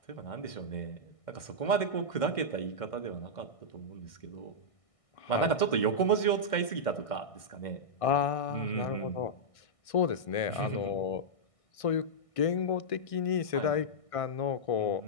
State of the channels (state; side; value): late; right; 1.6 ms